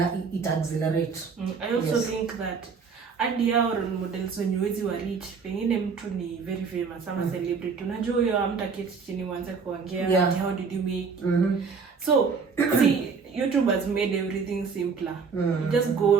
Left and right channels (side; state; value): left; quieter; 5.4 dB